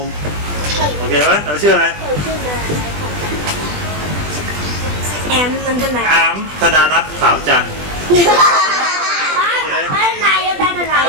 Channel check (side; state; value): left; late; 20 ms